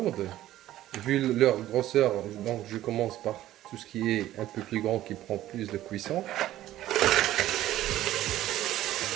vu leur grosseur, donc je commence par tout ce qui est un peu plus grand qui prend plus de cuisson.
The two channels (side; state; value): left; quieter; 14.0 dB